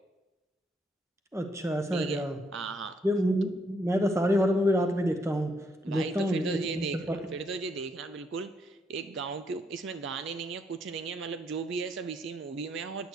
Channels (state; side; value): normal; both; correlation 0.74